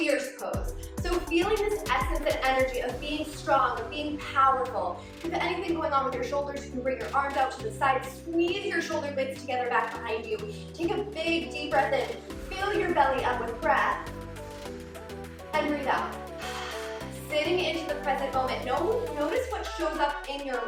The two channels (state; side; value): identical; both; correlation 1.00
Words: pose. So feeling this essence and energy of being strong, of being powerful. If you have anything going on with your shoulders, you can bring your arms out to the side, squeeze your shoulder blades together back behind you. Take a big deep breath in, fill your belly up with breath, and breathe out. Sitting into the present moment. Notice what shows up in your